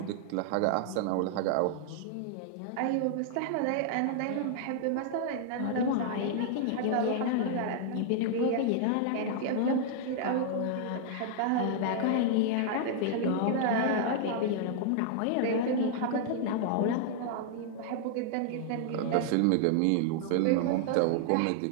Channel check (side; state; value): both; different; correlation -0.01